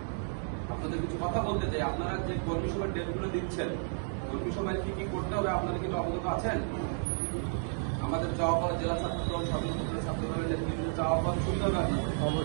আপনাদের কিছু কথা বলতে চাই। আপনারা যে কর্মী সভার ডেটগুলো দিচ্ছেন, কর্মী সভায় কি কি করতে হবে আপনারা কিন্তু অবগত আছেন? আমাদের চাওয়া পাওয়া জেলা ছাত্র দল সদর উপজেলা ছাত্র দলের নেতৃত্বে চাওয়া পাওয়া শুনতে হবে আপনাদের।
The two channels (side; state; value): left; silent; 56 dB below the other